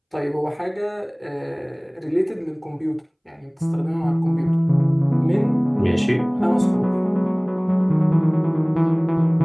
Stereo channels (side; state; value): both; identical; correlation 1.00